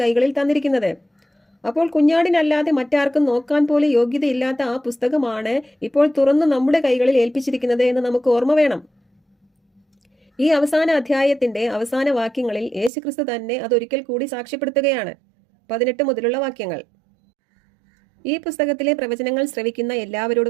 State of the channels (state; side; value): drops out; left; at 12.9 s